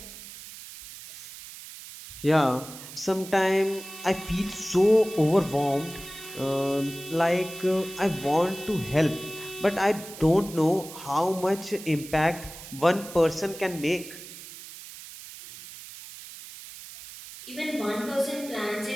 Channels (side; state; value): right; noise; hiss, 14 dB below the sound